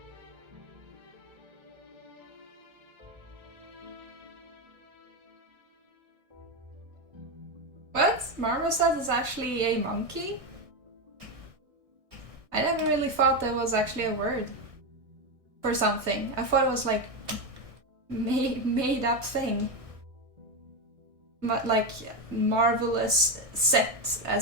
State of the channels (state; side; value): late; left; 1.6 ms